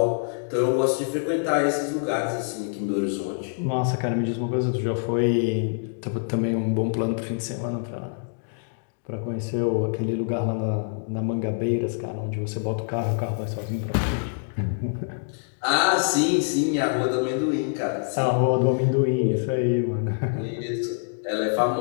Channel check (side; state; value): right; silent; digital silence